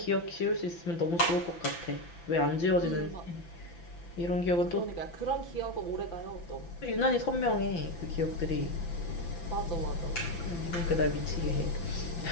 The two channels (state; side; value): late; right; 5.9 ms